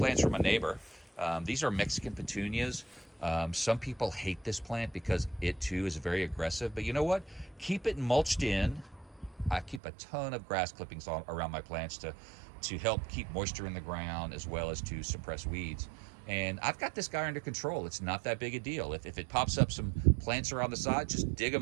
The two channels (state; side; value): drops out; left; at 9.8 s